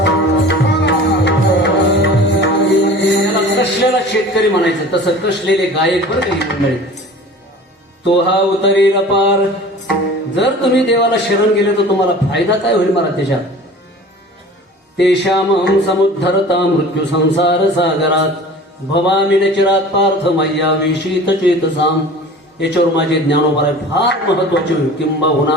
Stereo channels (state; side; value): normal; both; correlation 0.42